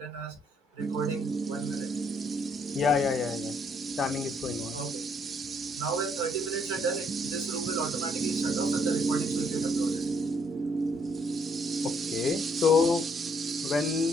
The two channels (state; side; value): normal; both; correlation 0.69